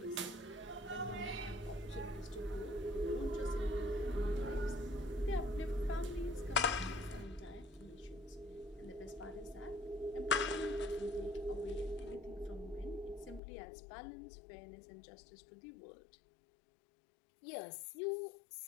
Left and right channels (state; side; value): drops out; right; at 13.4 s